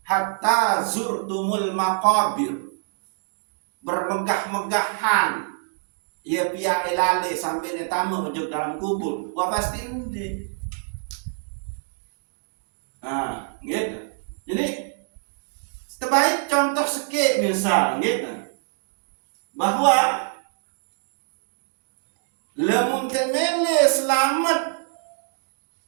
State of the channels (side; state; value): left; silent; 62 dB below the other